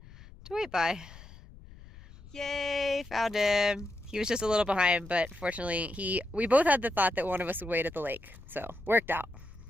wait by. Yay, found him. He was just a little behind, but fortunately we both had the thought that one of us would wait at the lake, so worked out.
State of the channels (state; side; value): noise; left; rumble, 19 dB below the sound